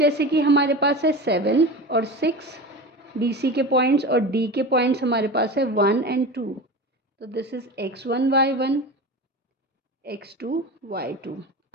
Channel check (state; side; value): normal; both; correlation 0.29